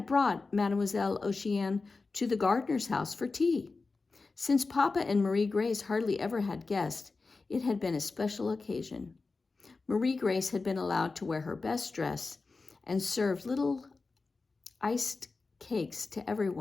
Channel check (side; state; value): right; quieter; 3.9 dB